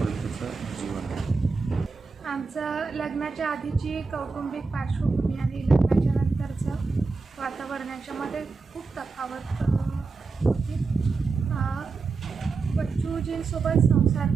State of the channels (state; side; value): quieter; left; 4.4 dB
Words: जीवन आहे. आमचं लग्नाच्या आधीची कौटुंबिक पार्श्वभूमी आणि लग्नाच्या नंतरचं वातावरण याच्यामध्ये खूप तफावत होती. बच्चूजींसोबत संसार